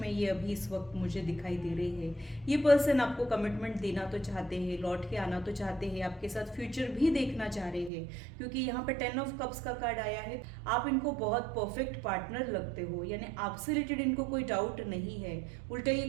ये अभी इस वक्त मुझे दिखाई दे रहे हैं। ये पर्सन आपको कमिटमेंट देना तो चाहते हैं, लौट के आना तो चाहते हैं, आपके साथ फ्यूचर भी देखना चाह रहे हैं, क्योंकि यहाँ पे 10 ऑफ कप्स का कार्ड आया है। आप इनको बहुत परफेक्ट पार्टनर लगते हो, यानी आपसे रिलेटेड इनको कोई डाउट नहीं है, उल्टा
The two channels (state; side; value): drops out; left; at 7.9 s